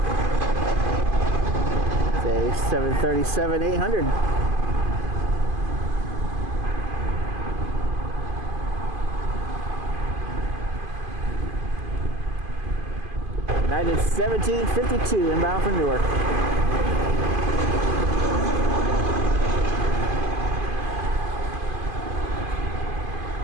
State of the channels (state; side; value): late; left; 2.5 ms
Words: It's a 737-800. United 1752 inbound from Newark.